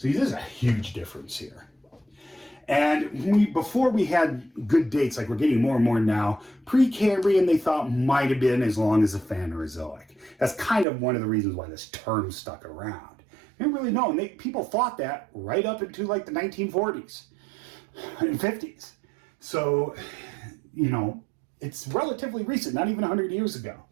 there's a huge difference here. And before we had good dates, like we're getting more and more now, Precambrian they thought might have been as long as the Phanerozoic. That's kind of one of the reasons why this term stuck around. They didn't really know, and people thought that right up into like the 1940s and 50s. So, you know, it's relatively recent, not even 100 years ago.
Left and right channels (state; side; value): drops out; left; at 10.9 s